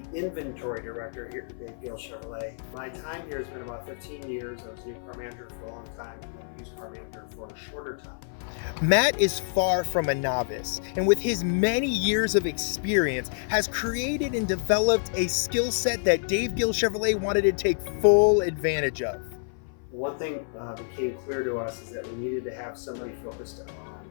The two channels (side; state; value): right; silent; 55 dB below the other